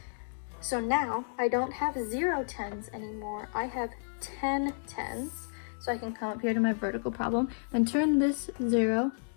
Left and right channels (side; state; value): right; silent; digital silence